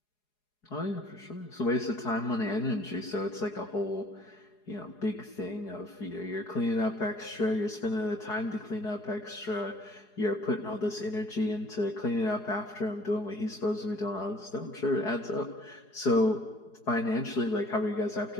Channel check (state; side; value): late; right; 4.8 ms